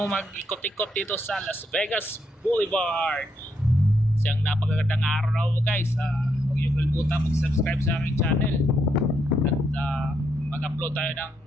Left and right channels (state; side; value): normal; both; correlation 0.78